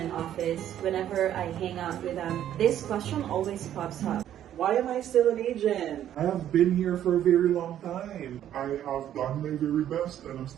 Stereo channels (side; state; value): left; quieter; 11.1 dB